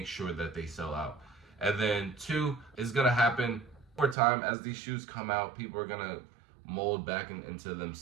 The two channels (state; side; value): drops out; left; at 4.2 s